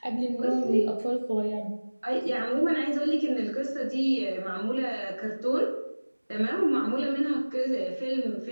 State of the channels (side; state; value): both; inverted; correlation -1.00